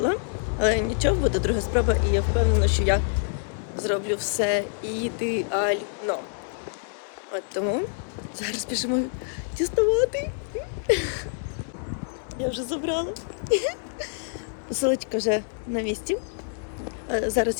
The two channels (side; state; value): right; silent; digital silence